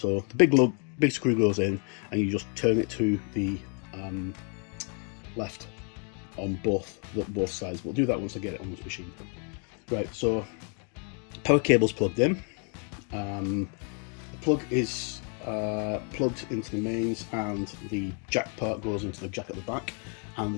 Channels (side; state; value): right; quieter; 39.7 dB